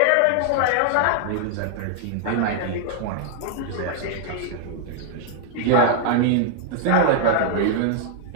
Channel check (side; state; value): both; different; correlation 0.00